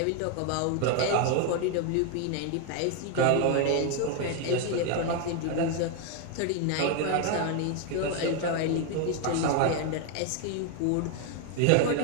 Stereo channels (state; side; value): different; both; correlation 0.01